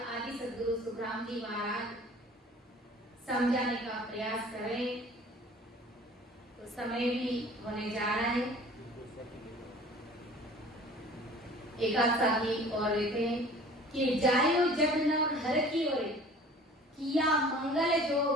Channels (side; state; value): both; normal; correlation 0.47